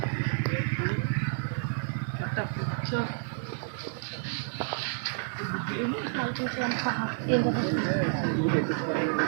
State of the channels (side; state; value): left; silent; 58 dB below the other